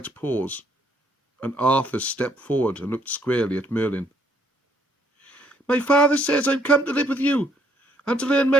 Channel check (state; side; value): normal; both; correlation 0.68